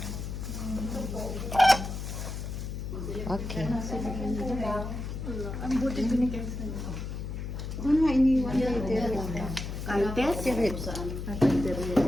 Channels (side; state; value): left; noise; hum, 6 dB below the sound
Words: Okay. Ang buti binigay sa iyo. Ano nga iniwan niya? Kaltes? Saan?